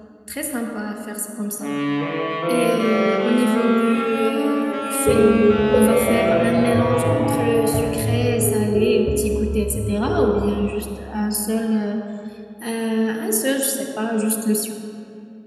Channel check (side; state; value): both; identical; correlation 1.00